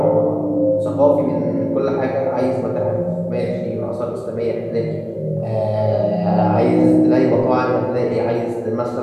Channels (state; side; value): identical; both; correlation 1.00